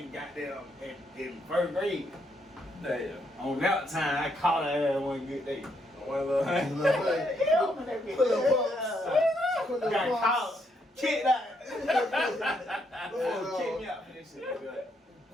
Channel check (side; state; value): both; normal; correlation 0.75